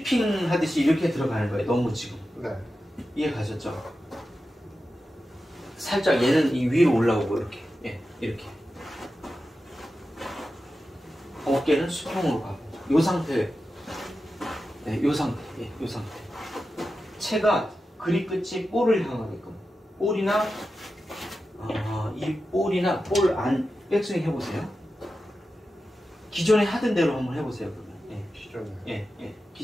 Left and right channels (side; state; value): both; normal; correlation 0.92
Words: 하듯이 이렇게 들어가는 거예요. 너무 지금. 네. 이해 가셨죠? 살짝 얘는 이 위로 올라오고 이렇게 예, 이렇게 어깨는 수평으로 가고 요 상태 네, 요 상태 예, 요 상태 체가 그립 끝이 볼을 향하게끔 볼이나 이 볼이나 볼 안 백스윙 해보세요. 기존에 하던 대로 한번 해보세요. 그러면 기존에